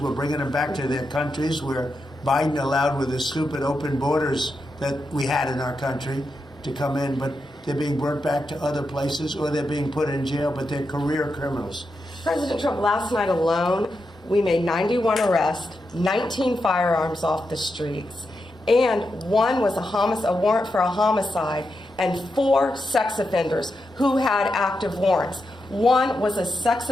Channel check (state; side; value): normal; both; correlation 0.87